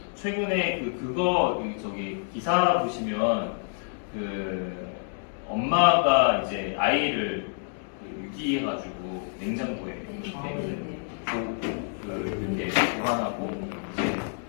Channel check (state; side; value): silent; right; 59 dB below the other